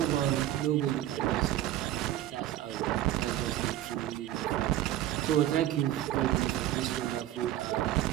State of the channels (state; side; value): quieter; left; 13.1 dB